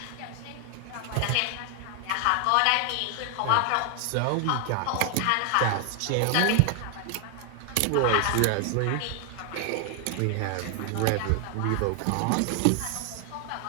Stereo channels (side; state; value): both; different; correlation 0.00